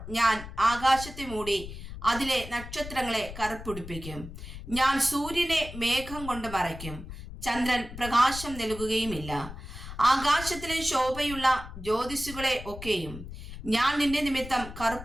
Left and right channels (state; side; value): noise; left; rumble, 11 dB below the sound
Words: ഞാൻ ആകാശത്തെ മൂടി അതിലെ നക്ഷത്രങ്ങളെ കറുപ്പുടിപ്പിക്കും. ഞാൻ സൂര്യനെ മേഘം കൊണ്ട് മറയ്ക്കും. ചന്ദ്രൻ പ്രകാശം നൽകുകയുമില്ല. ആകാശത്തിലെ ശോഭയുള്ള ജ്യോതിസുകളെ ഒക്കെയും ഞാൻ നിന്റെ നിമിത്തം